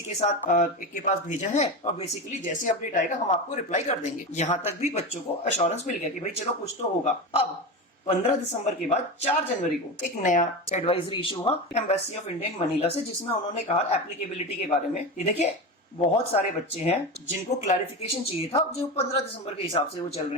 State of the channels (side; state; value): both; normal; correlation 0.22